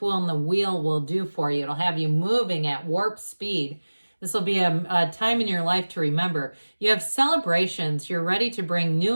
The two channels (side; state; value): both; inverted; correlation -1.00